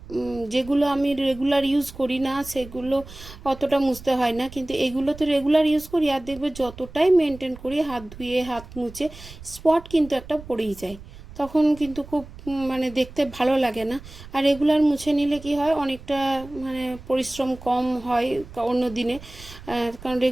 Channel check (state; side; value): noise; right; rumble, 17 dB below the sound